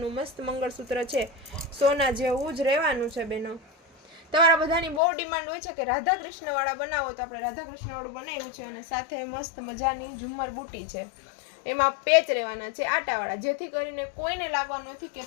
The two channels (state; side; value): drops out; right; at 5.0 s